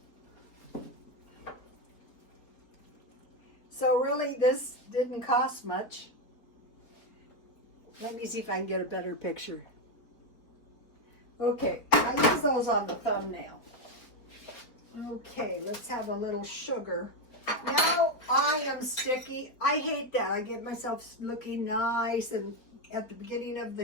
So really, this didn't cost much. Let me see if I can get a better picture. Okay, I use those on the thumbnail. Okay, let's have a little sugar. Now I am sticky. I hate that. I get myself looking nice and at the beginning of the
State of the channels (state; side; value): late; right; 4.4 ms